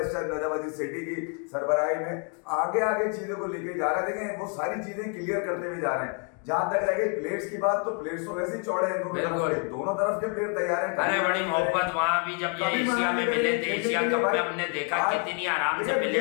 स्टेप नजम अजीज सेठी की सरबराही में आगे चीजों को लेके जा रहे हैं, देखें वो सारी चीजें क्लियर करते हुए जा रहे हैं। जहां तक रह गई प्लेयर्स की बात, तो प्लेयर्स तो वैसे ही चौड़े हैं, दोनों तरफ के प्लेयर तैयार हैं। अरे बड़ी मोहब्बत वहां भी जब ये एशिया में मिले थे, एशिया कप में हमने देखा कितनी आराम से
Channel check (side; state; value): right; quieter; 39.7 dB